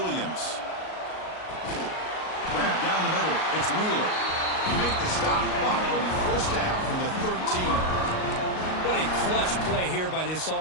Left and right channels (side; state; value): right; late; 38 ms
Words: Grab down the middle, it's Wheeler. You make the stop, but it'll be first down from the 13. What a clutch play here by this